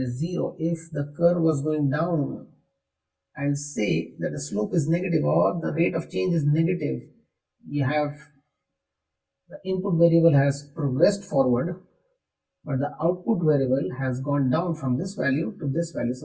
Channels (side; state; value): both; identical; correlation 1.00